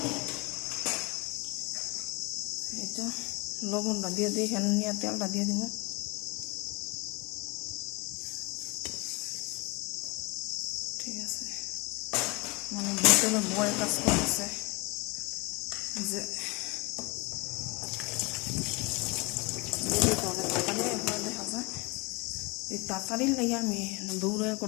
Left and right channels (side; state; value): right; quieter; 27.1 dB